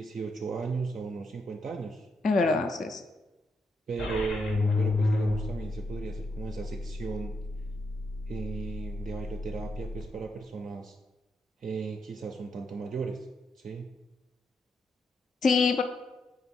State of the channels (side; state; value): both; normal; correlation 0.81